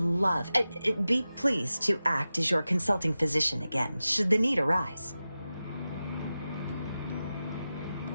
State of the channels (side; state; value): both; inverted; correlation -0.94